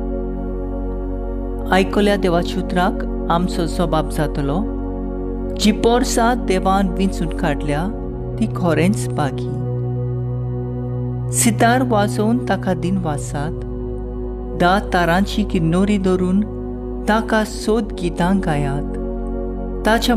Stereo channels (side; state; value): both; identical; correlation 1.00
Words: आयकल्या देवाच्या उतराक आमचो जबाब जातलो. जी पोरसां देवान विंचून काडल्या ती खरेंच बागी. सितार वाजोवन ताका दिन वाजसात, 10 तारांची किन्नोरी धरून ताका सोद गितां गायात. ताच्या